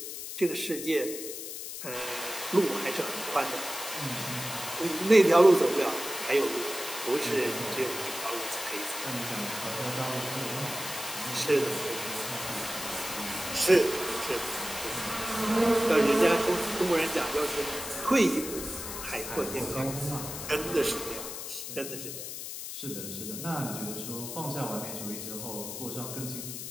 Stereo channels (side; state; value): left; noise; hiss, 7 dB below the sound